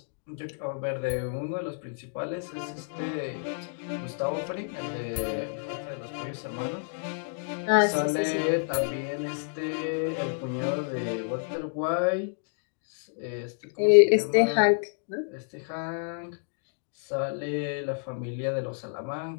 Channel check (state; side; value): silent; right; digital silence